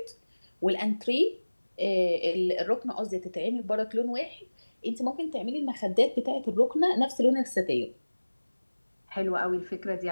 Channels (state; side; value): inverted; both; correlation -1.00